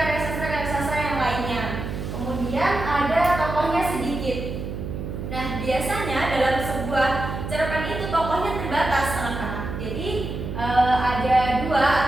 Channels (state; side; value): noise; right; hum, 6 dB below the sound